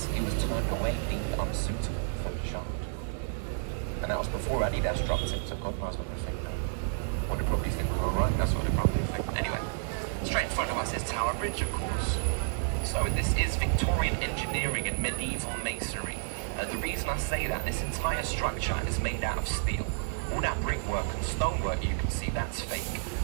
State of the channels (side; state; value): left; silent; digital silence